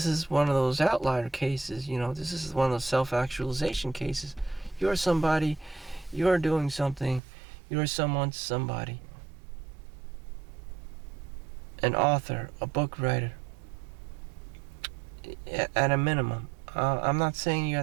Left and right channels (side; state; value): left; drops out; at 7.2 s